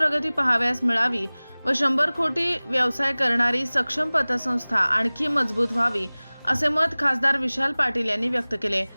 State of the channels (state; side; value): inverted; both; correlation -1.00